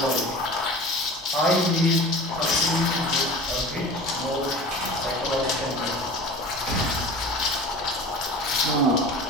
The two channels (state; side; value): normal; both; correlation 0.38